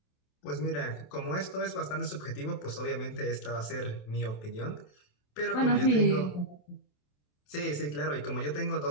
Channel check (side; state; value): right; late; 27 ms